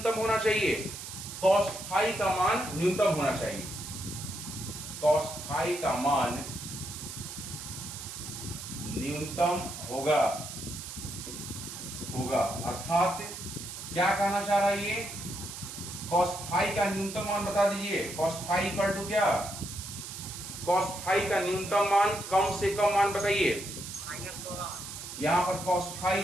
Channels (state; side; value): noise; right; hiss, 9 dB below the sound